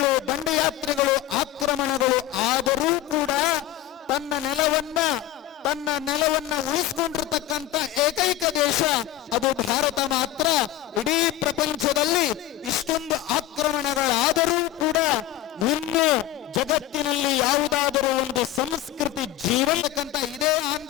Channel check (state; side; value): quieter; right; 13.5 dB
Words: ದಂಡಯಾತ್ರೆಗಳು, ಆಕ್ರಮಣಗಳು ಆದರೂ ಕೂಡ ತನ್ನ ನೆಲವನ್ನ ಉಳಿಸಿಕೊಂಡಿರ್ತಕ್ಕಂಥ ಏಕೈಕ ದೇಶ ಅದು ಭಾರತ ಮಾತ್ರ. ಇಡೀ ಪ್ರಪಂಚದಲ್ಲಿ ಇಷ್ಟೊಂದು ಆಕ್ರಮಣಗಳಾದರೂ ಕೂಡ ಇನ್ನು ಜಗತ್ತಿನಲ್ಲಿ ಯಾವುದಾದರೂ ಒಂದು ಸಂಸ್ಕೃತಿ ಜೀವಂತಕ್ಕಂಥ ಇದೇ